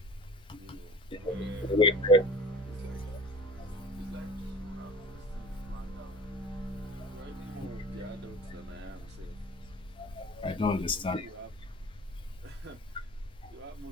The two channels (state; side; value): normal; both; correlation 0.42